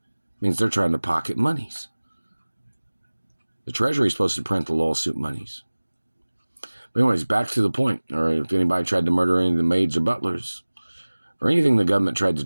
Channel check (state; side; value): inverted; both; correlation -1.00